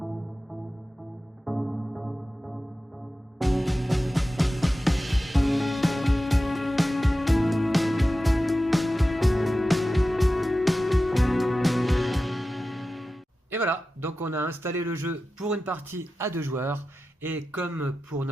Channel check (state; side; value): normal; both; correlation 0.93